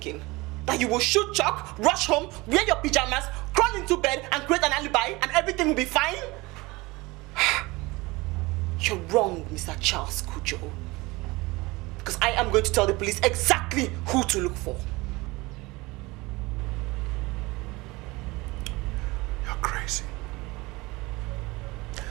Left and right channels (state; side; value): quieter; left; 22.6 dB